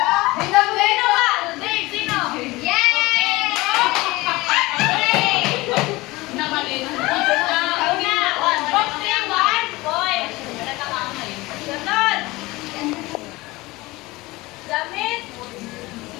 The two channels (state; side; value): quieter; right; 21.0 dB